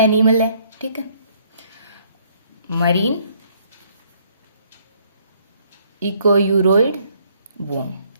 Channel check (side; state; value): both; inverted; correlation -0.66